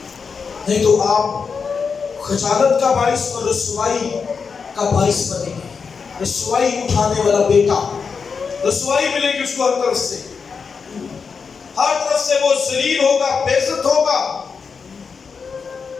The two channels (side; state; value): right; quieter; 5.5 dB